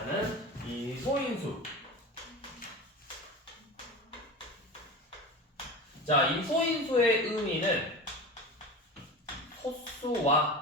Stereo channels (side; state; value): both; normal; correlation 0.30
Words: 이 소인수. 자, 이 소인수의 의미는